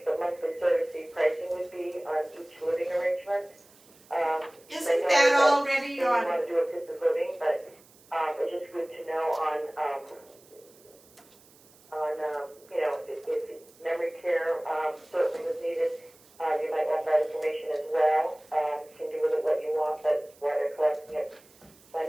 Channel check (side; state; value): right; noise; hiss, 27 dB below the sound